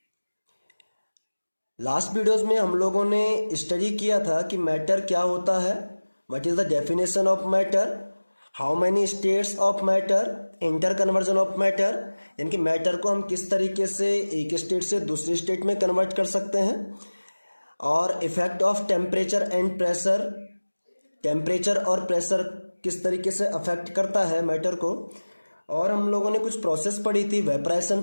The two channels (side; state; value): both; inverted; correlation -1.00